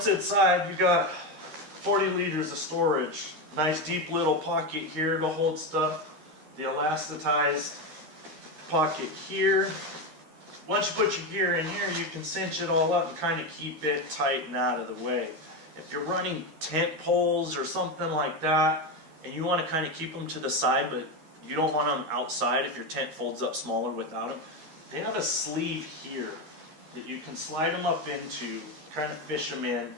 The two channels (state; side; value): late; left; 13 ms